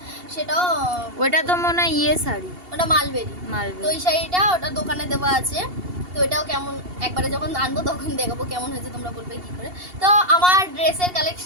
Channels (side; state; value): left; late; 2.8 ms